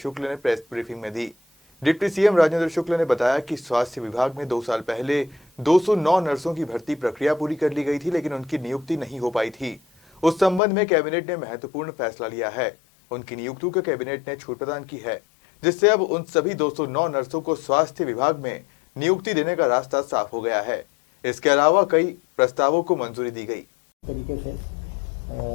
ने प्रेस ब्रीफिंग में दी। डिप्टी सीएम राजेंद्र शुक्ल ने बताया कि स्वास्थ्य विभाग में 2 साल पहले 209 नर्सों की भर्ती प्रक्रिया पूरी कर ली गई थी, लेकिन उनकी नियुक्ति नहीं हो पाई थी। उस संबंध में कैबिनेट ने महत्वपूर्ण फैसला लिया है। उनकी नियुक्ति को कैबिनेट ने छूट प्रदान की है, जिससे अब उन सभी 209 नर्सों को स्वास्थ्य विभाग में नियुक्ति देने का रास्ता साफ हो गया है। इसके अलावा कई प्रस्तावों को मंजूरी दी गई। तरीके से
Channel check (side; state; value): right; drops out; at 10.6 s